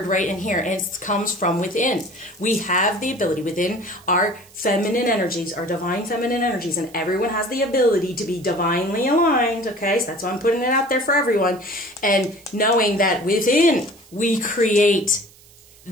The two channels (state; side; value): noise; right; hiss, 25 dB below the sound